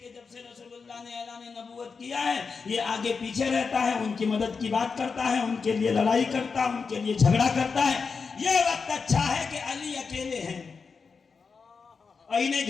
جب سے رسول اللہ نے اعلان نبوت کیا ہے یہ آگے پیچھے رہتا ہے، ان کی مدد کی بات کرتا ہے، ان کے لیے لڑائی کرتا ہے، ان کے لیے جھگڑا کرتا ہے۔ یہ وقت اچھا ہے کہ علی اکیلے ہیں اور انہیں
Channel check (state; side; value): quieter; right; 5.1 dB